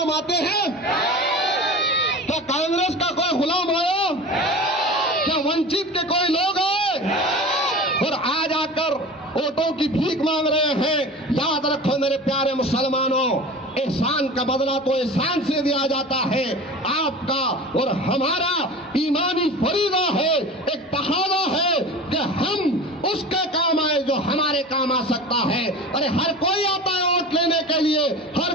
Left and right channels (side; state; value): both; normal; correlation 0.35